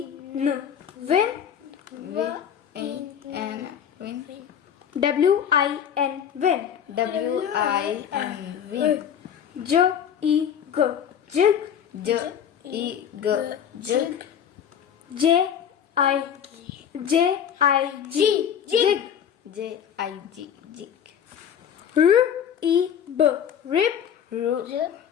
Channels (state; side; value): quieter; right; 8.6 dB